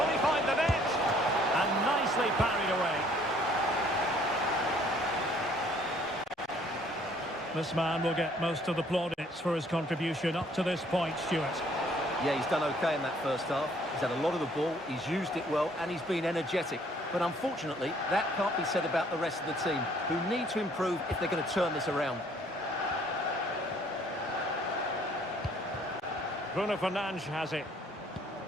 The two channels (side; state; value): both; normal; correlation 0.61